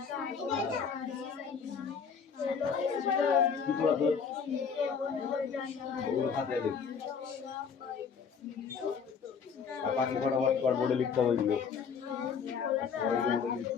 কি পড়া তোর ওগুলো খাতায় দেখ আর বাকি ফটাফট কর বোর্ডে লিখতে হবে এগুলো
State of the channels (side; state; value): right; quieter; 6.3 dB